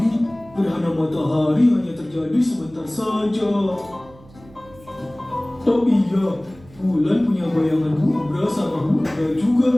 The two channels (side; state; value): right; noise; hum, 24 dB below the sound